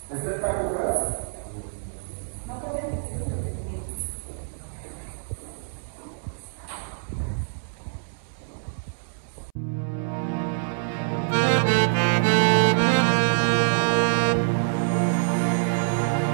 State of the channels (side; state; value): left; silent; 59 dB below the other